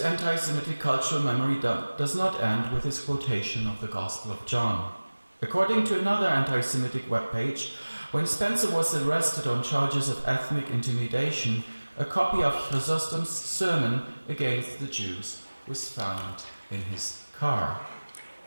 cultural memory does not end with his quotation of the Gospel of John. According to another anti-Semitic webpage, when Spencer was arrested on charges of ethnic intimidation, a copy of Chrysostom's sermon against the Jews was found in his car.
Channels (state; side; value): inverted; both; correlation -1.00